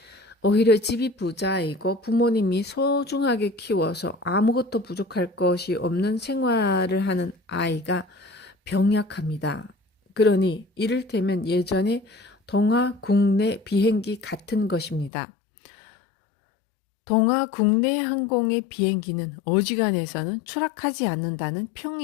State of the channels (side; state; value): right; drops out; at 15.1 s